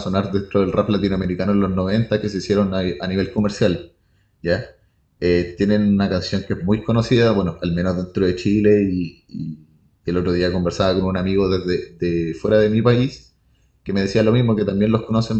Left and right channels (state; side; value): identical; both; correlation 1.00